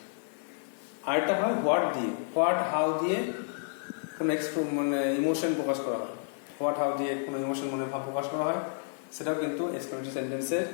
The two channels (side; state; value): right; silent; 56 dB below the other